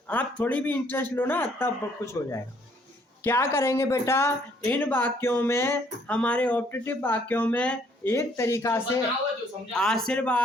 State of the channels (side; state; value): both; normal; correlation 0.65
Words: आप थोड़ी भी इंटरेस्ट लो ना तब कुछ हो जाएगा। क्या करेंगे बेटा? इन वाक्यों में, हमारे ऑप्टेटिव वाक्यों में एक तरीका से